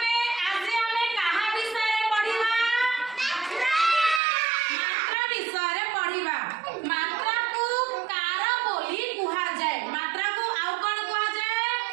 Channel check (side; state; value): left; drops out; at 4.2 s